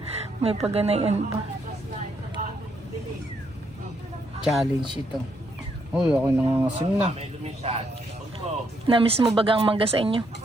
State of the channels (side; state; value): both; normal; correlation 0.75